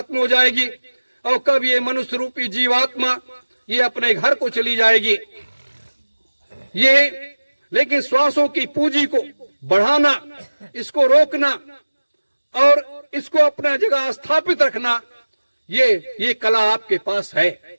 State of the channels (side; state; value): both; inverted; correlation -1.00